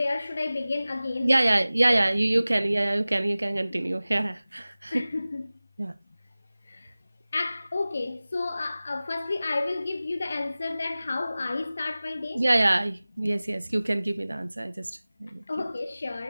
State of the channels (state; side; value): inverted; both; correlation -0.98